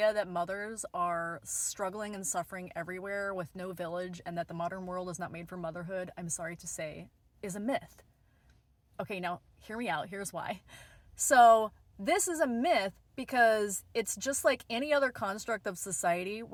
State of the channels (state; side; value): identical; both; correlation 1.00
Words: that mothers are struggling and suffering everywhere with no village and that the modern world is not made for motherhood, I'm sorry to say, is a myth. Okay, now hear me out. Here's why. So, this is a myth because it's just like any other construct of society